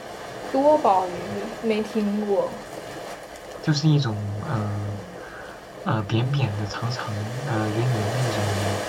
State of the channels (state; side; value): identical; both; correlation 1.00